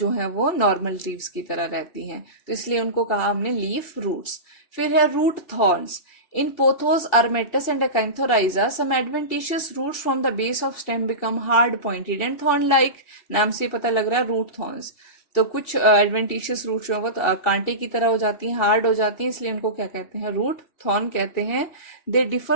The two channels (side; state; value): right; late; 2.7 ms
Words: है वो नॉर्मल लीव्स की तरह रहती हैं, तो इसलिए उनको कहा हमने लीफ रूट्स। फिर है root thorns. In Pothos, Armetus and Acanthorrhiza, some adventitious roots from the base of stem become hard pointed and thorn-like। नाम से पता लग रहा है रूट थॉर्न्स। तो कुछ एडवेंटिशियस रूट जो है वो कांटे की तरह हो जाती हैं, हार्ड हो जाती हैं, इसलिए उनको क्या कहते हैं, रूट थॉर्न कहते हैं। They